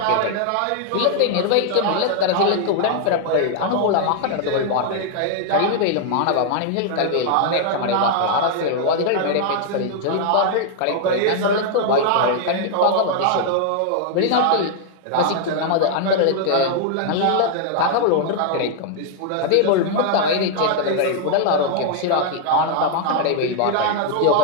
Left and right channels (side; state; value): both; different; correlation 0.00